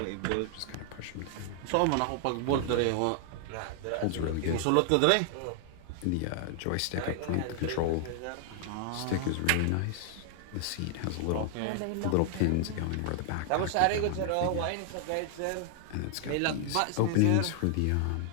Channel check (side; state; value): both; different; correlation 0.00